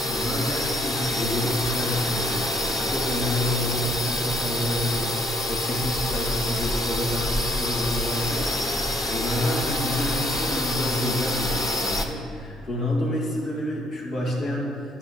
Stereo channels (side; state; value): both; normal; correlation 0.64